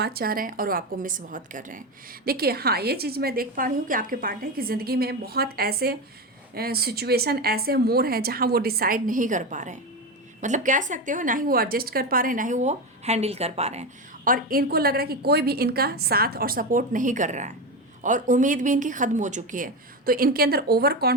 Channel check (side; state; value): both; normal; correlation 0.17